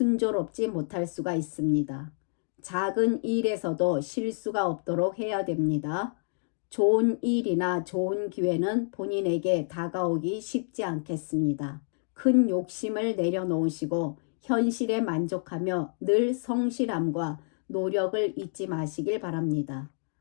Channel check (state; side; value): silent; right; digital silence